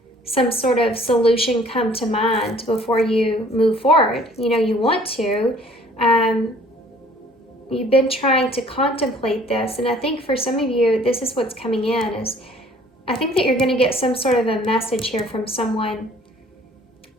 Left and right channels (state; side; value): normal; both; correlation 0.55